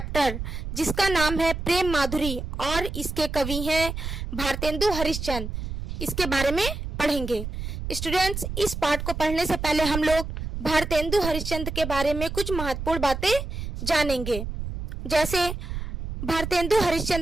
जिसका नाम है प्रेम माधुरी और इसके कवि हैं भारतेंदु हरिश्चंद्र, इसके बारे में पढ़ेंगे। स्टूडेंट्स, इस पाठ को पढ़ने से पहले हम लोग भारतेंदु हरिश्चंद्र के बारे में कुछ महत्वपूर्ण बातें जानेंगे। जैसे भारतेंदु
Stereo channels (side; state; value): right; noise; rumble, 6 dB below the sound